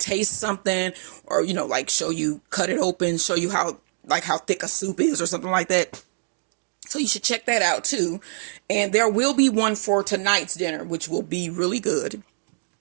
something, or, you know, like show you, cut it open, show you how thick a soup is or something like that. So you should check that out too. And there will be one for tonight's dinner, which will be really good.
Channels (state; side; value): silent; left; digital silence